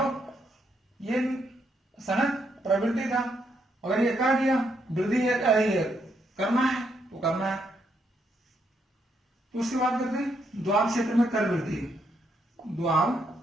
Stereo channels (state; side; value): normal; both; correlation 0.76